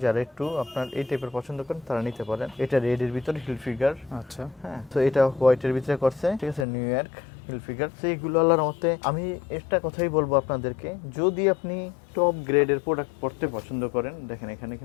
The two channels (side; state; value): right; drops out; at 6.7 s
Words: যারা একটু আপনার এই টাইপের পছন্দ করেন তারা নিতে পারেন। এটা রেড এর ভিতরে হিল ফিগার, আচ্ছা হ্যাঁ তো এটা হোয়াইটের ভিতরে করছে, ঠিক আছে নিউ ইয়র্ক হিল ফিগার। তো এইগুলো আল্লাহর মতে আমি একটা কথাই বলবো আপনাদেরকে, যদি আপনি টপ গ্রেডের প্রোডাক্ট পড়তে পছন্দ করেন, দেখেন এখানে